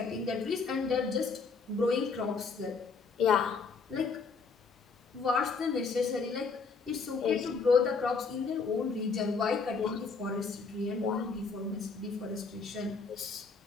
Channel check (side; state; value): right; quieter; 4.7 dB